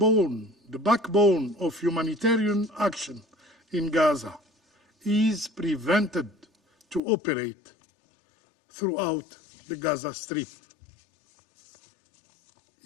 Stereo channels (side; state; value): right; drops out; at 7.0 s